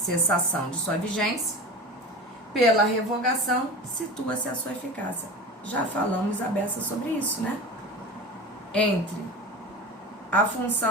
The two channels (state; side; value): normal; both; correlation 0.32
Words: de sua vigência, pela revogação, situa-se a sua eficácia. Já falamos a beça sobre isso, né? Entre a